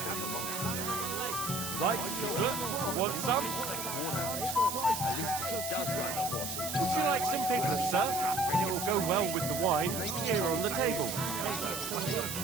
Would you like some piglet, sir? It will go well with the wine here on the table.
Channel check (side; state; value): right; noise; hiss, 5 dB below the sound